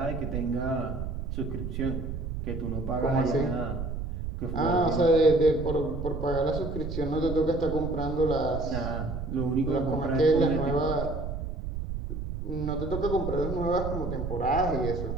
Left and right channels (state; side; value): noise; right; rumble, 5 dB below the sound